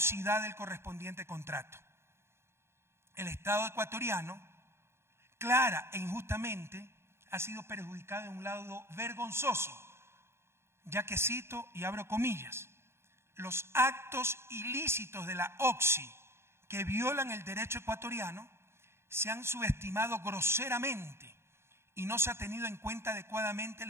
del correspondiente contrato. El Estado ecuatoriano, clara e injustamente, ha sido perjudicado de un lado vergonzoso, ya que cito y abro comillas, los actos ilícitos de la Oxy que violan el derecho ecuatoriano se han subestimado groseramente y no se ha tenido en cuenta adecuadamente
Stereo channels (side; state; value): left; late; 0.12 ms